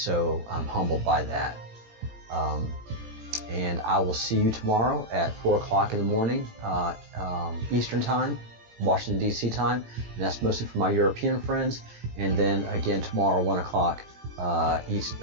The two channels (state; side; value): late; left; 18 ms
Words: I'm humbled by that. And I will see you tomorrow at 4 o'clock in the morning, Eastern Time, Washington, D.C. time. And that's mostly for my European friends. And then again tomorrow, 1 o'clock